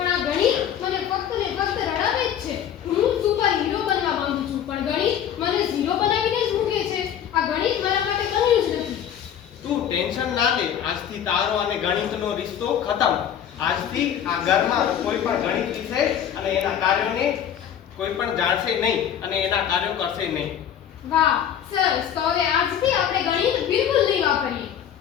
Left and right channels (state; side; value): quieter; right; 9.4 dB